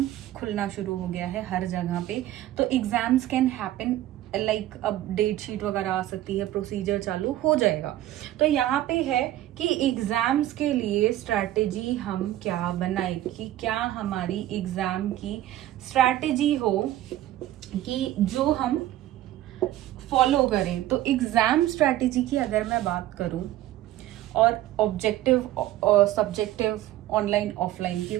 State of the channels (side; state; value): left; quieter; 14.0 dB